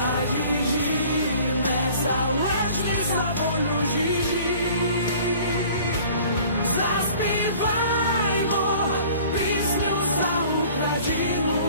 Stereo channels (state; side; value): inverted; both; correlation -0.49